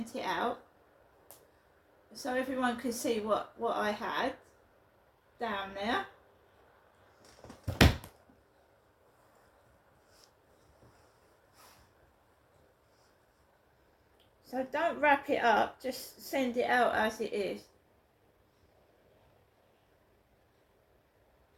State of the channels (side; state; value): both; identical; correlation 1.00